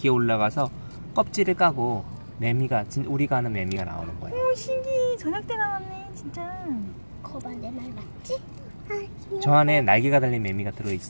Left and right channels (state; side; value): inverted; both; correlation -1.00